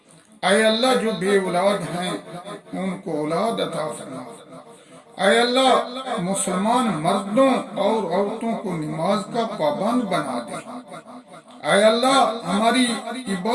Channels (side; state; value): both; identical; correlation 1.00